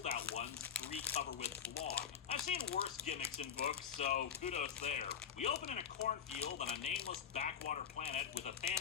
ones, 3 cover with blog. I've seen worse gimmicks in books, so kudos there. We open in a cornfield on a nameless backwater planet with a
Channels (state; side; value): quieter; right; 8.0 dB